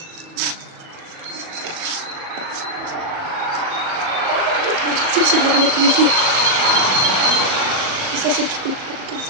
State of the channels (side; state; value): left; late; 37 ms